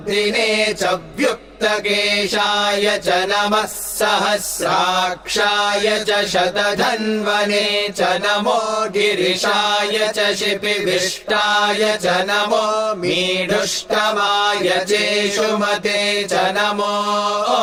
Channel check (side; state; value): both; identical; correlation 1.00